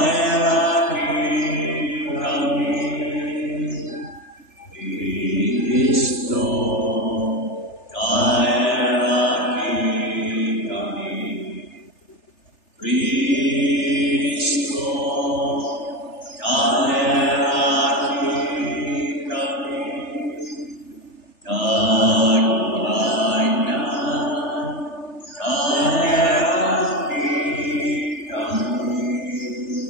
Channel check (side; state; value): right; late; 3.3 ms